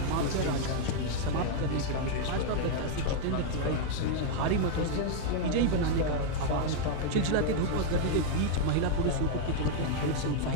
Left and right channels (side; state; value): both; different; correlation 0.00